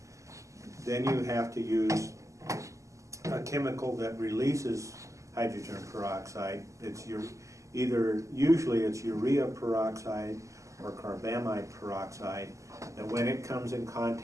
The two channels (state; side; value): late; left; 0.16 ms